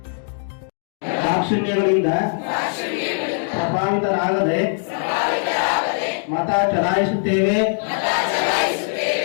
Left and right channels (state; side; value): silent; right; digital silence